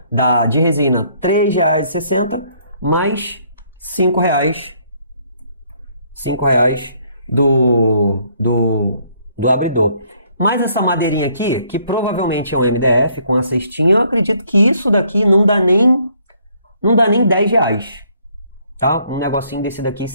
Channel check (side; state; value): both; inverted; correlation -0.66